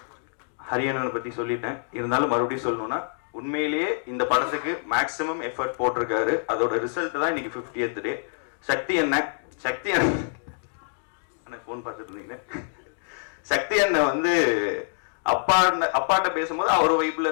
ஹரியனனை பத்தி சொல்லிட்டேன், இருந்தாலும் மறுபடியும் சொல்லணும்னா உண்மையிலேயே இந்த படத்துக்கு மேக்சிமம் எஃபர்ட் போட்டிருக்காரு. அதோட ரிசல்ட் தான் இன்னைக்கு 50th டே. சக்தி அண்ணன் போன் பார்த்துட்டு இருந்தீங்க. சக்தி அண்ணன் வந்து அப்பாட்ட பேசும்போது அவர் வைப்புல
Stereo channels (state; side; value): silent; right; digital silence